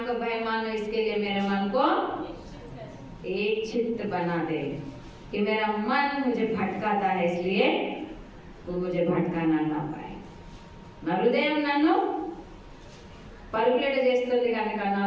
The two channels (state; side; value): identical; both; correlation 1.00